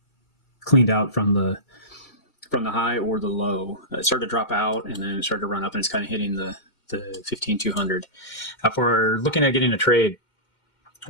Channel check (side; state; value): right; late; 2.1 ms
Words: cleaned out from the high or the low. It started to drop out, and then it started to run up, and it's kind of hitting the 15,200. For looking at getting a trade,